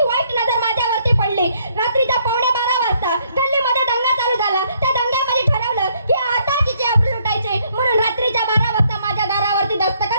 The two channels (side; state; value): both; inverted; correlation -0.68